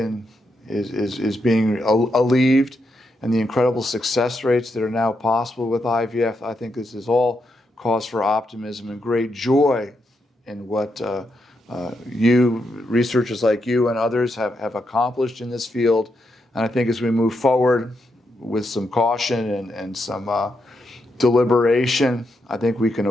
alleviated, and the incredible success rates that are now possible with IVF. I think this is all cause for optimism and great joy in what you, researchers like you and others have accomplished in this field. And I think as we move forward with some caution and some deliberation, I think we can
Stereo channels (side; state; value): both; normal; correlation 0.82